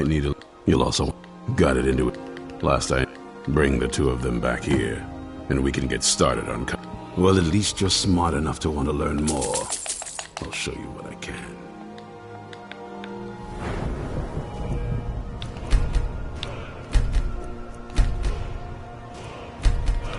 need a... You'll also... Got it into it. Last I... Bring the two of them back here. And we can get started on... Well, at least you're smart enough to want to learn more. I'll show you what I can.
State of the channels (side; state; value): both; identical; correlation 1.00